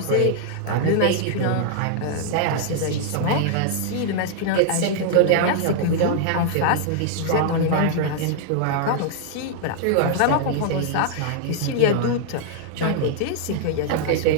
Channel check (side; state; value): both; different; correlation -0.01